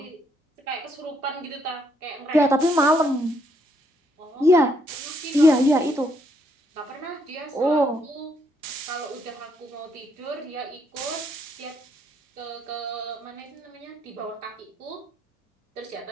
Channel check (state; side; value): normal; both; correlation 0.72